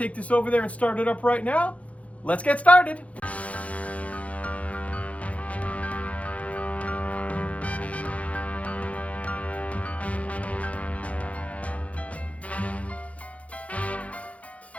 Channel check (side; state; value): right; late; 0.066 ms